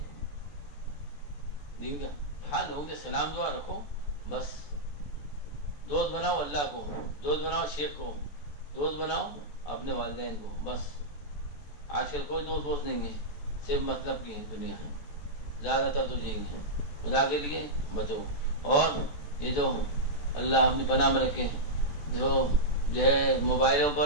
دین کا۔ ہاں لوگوں سے سلام دعا رکھو، بس دوست بناؤ اللہ کو، دوست بناؤ شیخ کو، دوست بناؤ اپنے والدین کو، بس۔ آج کل کوئی دوست نہیں ہے، صرف مطلب کی دنیا ہے، زیادہ تر تو یہی ہے۔ خدا کے لیے بچو، اور یہ جو اللہ اپنی پناہ میں رکھے جو ہے موبائلوں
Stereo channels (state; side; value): late; right; 14 ms